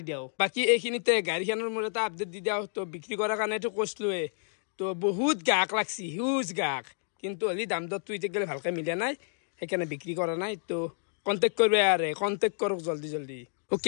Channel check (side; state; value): right; silent; digital silence